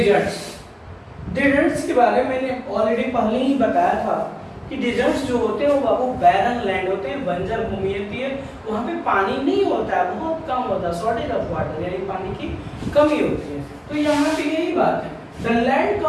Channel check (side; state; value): both; identical; correlation 1.00